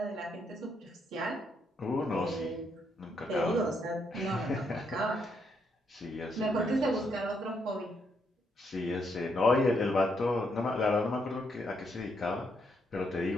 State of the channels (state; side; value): normal; both; correlation 0.76